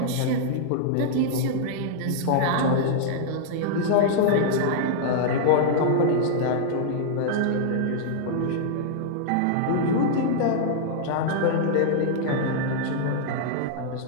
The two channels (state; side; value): different; both; correlation -0.01